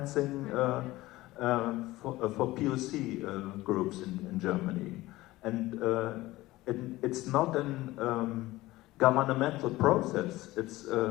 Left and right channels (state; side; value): quieter; right; 18.2 dB